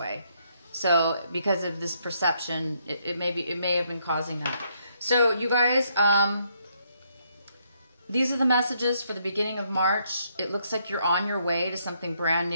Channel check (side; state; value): both; inverted; correlation -0.74